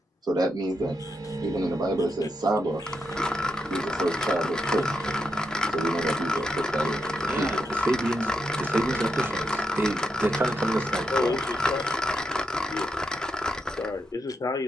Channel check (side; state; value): both; normal; correlation 0.83